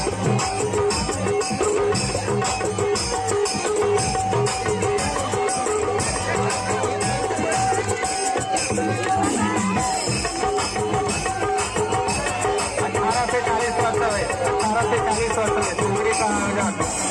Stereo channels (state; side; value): identical; both; correlation 1.00